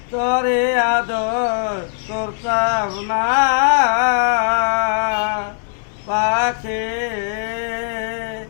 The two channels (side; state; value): right; silent; 61 dB below the other